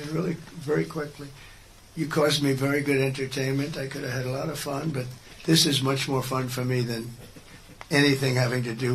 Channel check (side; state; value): both; identical; correlation 1.00